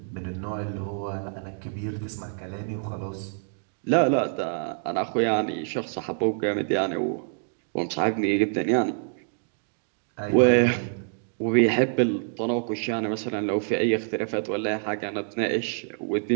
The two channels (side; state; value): left; silent; digital silence